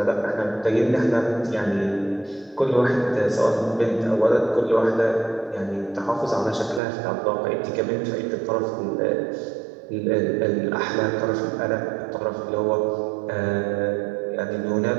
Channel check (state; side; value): drops out; left; at 6.8 s